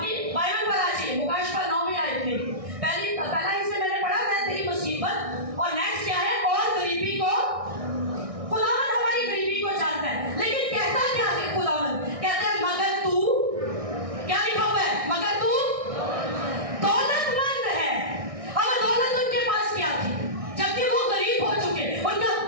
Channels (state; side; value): late; left; 1.6 ms